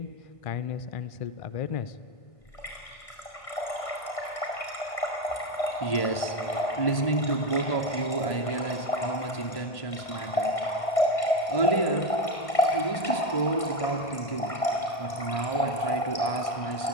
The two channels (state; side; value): late; right; 1.5 ms